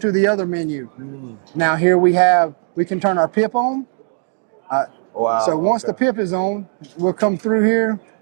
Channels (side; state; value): left; silent; 63 dB below the other